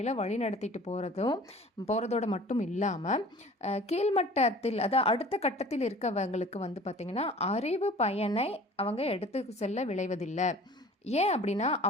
வழி நடத்திட்டு போகிறதோட மட்டும் இல்லாமல் கீழ்மட்டத்தில் அதாவது அடுத்த கட்டத்தில் இருக்கவங்களுக்கு பார்த்திங்கன்னா அறிவு பயனை அவங்க எடுத்து செல்ல விளைவதில்லை. ஏன் அப்படின்னா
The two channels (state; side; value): normal; both; correlation 0.46